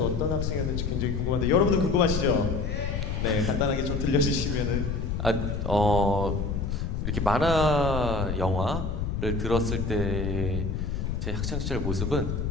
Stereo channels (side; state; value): left; noise; rumble, 2 dB below the sound